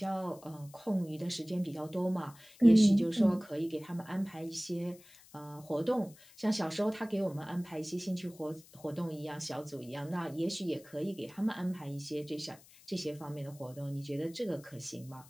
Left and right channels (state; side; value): noise; left; hiss, 23 dB below the sound